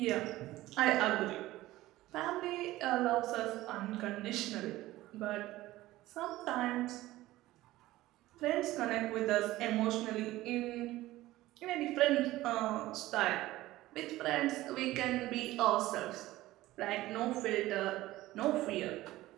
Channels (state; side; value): quieter; left; 16.8 dB